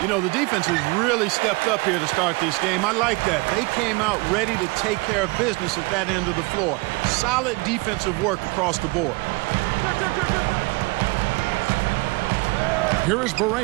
You know, the defense has really stepped up here to start this game. I like that. They came out ready to take care of business at that end of the floor. Solid defensive work across the board. Here is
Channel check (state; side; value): quieter; left; 26.1 dB